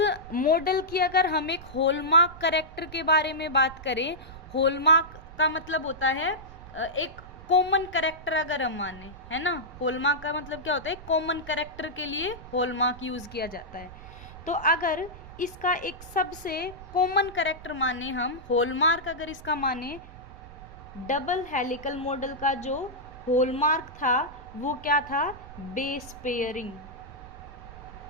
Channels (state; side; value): noise; right; rumble, 16 dB below the sound